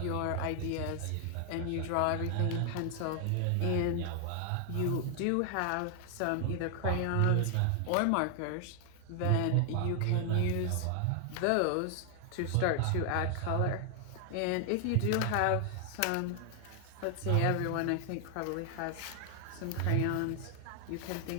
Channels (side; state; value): both; different; correlation 0.00